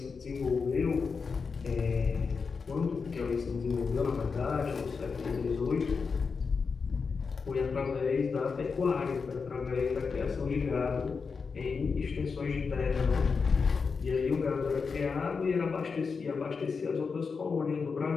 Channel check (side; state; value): right; quieter; 5.1 dB